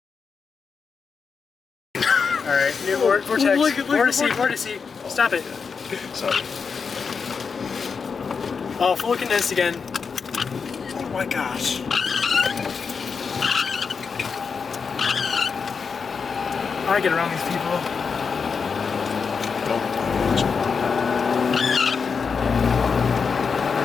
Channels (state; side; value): quieter; right; 5.6 dB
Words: All right. New vortex. Look at Vortice. Stop it. Sorry. Oh, fully condensed again. Oh my gosh. I get around these people.